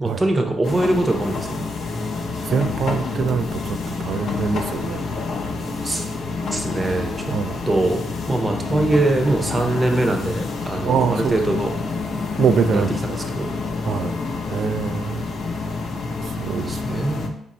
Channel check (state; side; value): normal; both; correlation 0.81